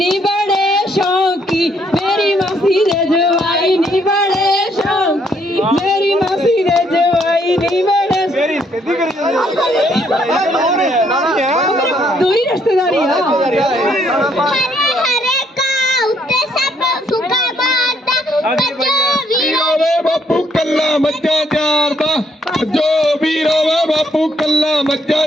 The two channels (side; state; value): both; normal; correlation 0.70